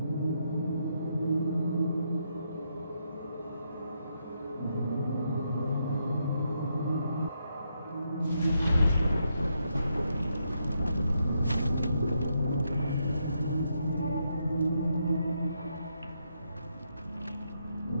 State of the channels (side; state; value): both; inverted; correlation -0.79